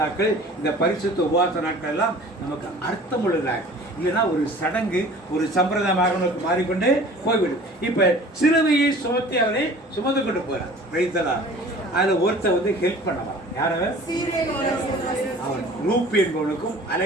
இந்த பரிசுத்த உபவாச நாட்கள் எல்லாம் நமக்கு அர்த்தம் உள்ளதாக. இல்லைன்னா ஒரு சடங்கு, ஒரு சம்பிரதாயமாக மாறிக்கொண்டு போய்விடும். இப்ப சிலுவையை சுமத்தி அவரை சுமந்து கொண்டு போறார். பிரைத்தலா அதுல ஒருத்தர் வந்து ஹெல்ப் பண்ண வரான். யாரவர்? அவன் ரூப் என்பவனுக்கும்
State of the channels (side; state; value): both; normal; correlation 0.46